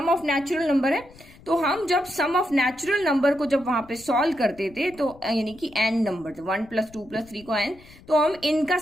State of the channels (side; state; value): left; noise; rumble, 23 dB below the sound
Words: ऑफ नेचुरल नंबर है। तो हम जब सम ऑफ नेचुरल नंबर को जब वहां पे सॉल्व करते थे, तो यानी कि एन नंबर थे, 1 + 2 + 3 को एन, तो हम इनका